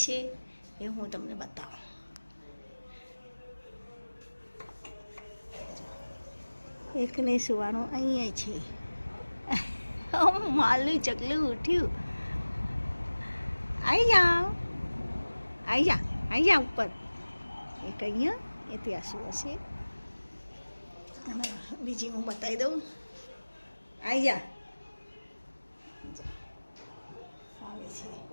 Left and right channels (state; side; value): inverted; both; correlation -1.00